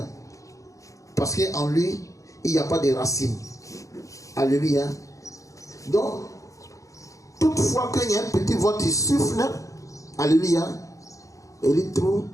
Parce qu'en lui, il n'y a pas de racines. Alléluia. Donc, toutefois qu'il y a un petit vent qui souffle, alléluia, et il trouve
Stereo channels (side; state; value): right; late; 0.16 ms